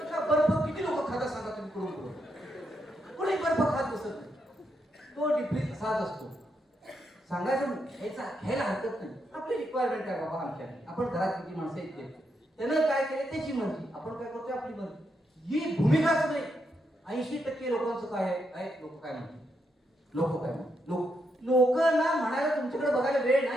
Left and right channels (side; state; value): both; normal; correlation 0.81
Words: बर्फ किती लोक खाता सांगा तुम्ही? करून कोणी बर्फ खात बसत नाही. तो डिफ्रीज असाच असतो. सांगायचं घ्यायला हरकत नाही. आपली रिक्वायरमेंट आहे बाबा आमच्या. आपण घरात किती माणसं येते त्यानं काय केले त्याची मर्जी, आपण काय करतोय आपली मर्जी. ही भूमिकाच नाही. 80% लोकांचं काय आहे? लोक काय म्हणतात, लोक काय म्हणतात. लोकांना म्हणायला तुमच्याकडे बघायला वेळ